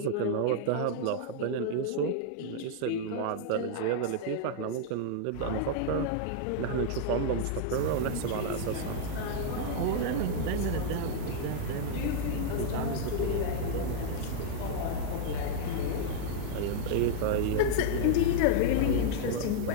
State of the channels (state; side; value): different; both; correlation -0.01